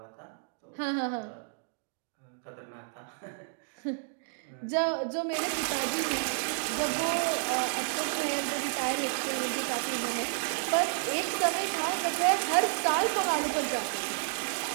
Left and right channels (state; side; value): silent; left; digital silence